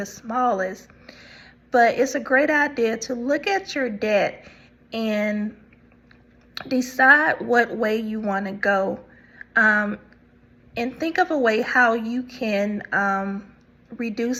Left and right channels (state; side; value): identical; both; correlation 1.00